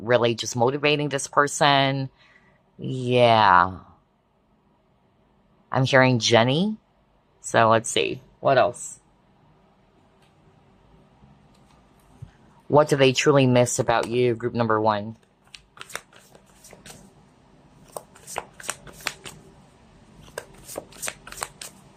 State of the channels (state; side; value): identical; both; correlation 1.00